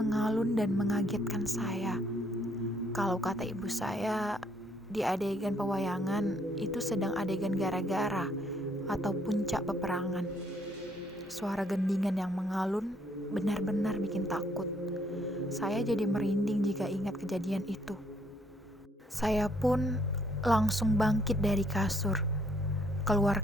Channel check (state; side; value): normal; both; correlation 0.68